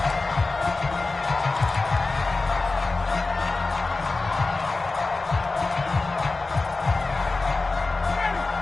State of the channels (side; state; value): right; quieter; 3.6 dB